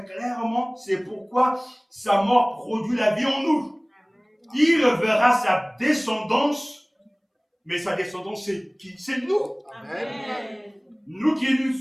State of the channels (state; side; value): identical; both; correlation 1.00